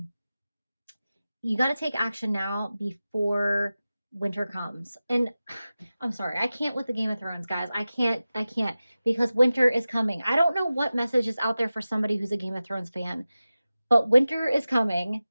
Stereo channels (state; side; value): inverted; both; correlation -0.95